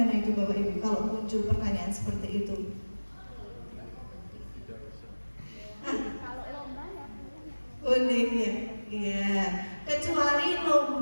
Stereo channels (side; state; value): both; inverted; correlation -1.00